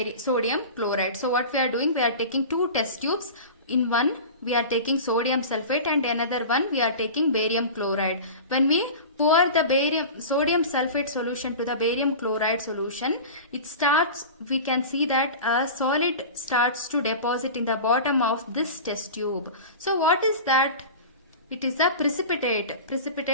sodium chloride. So what we are doing, we are taking two test tubes. In one we are taking sodium sulfate and another one we are taking barium chloride. When we pour the sodium sulfate solution to the barium chloride solution, we can see that a solid starts to deposit in the bottom of this test tube. So what is that? It is a precipitate.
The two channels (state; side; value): inverted; both; correlation -0.33